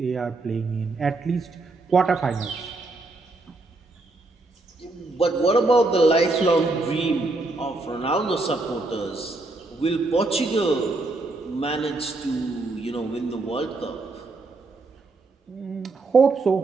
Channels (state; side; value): quieter; left; 3.2 dB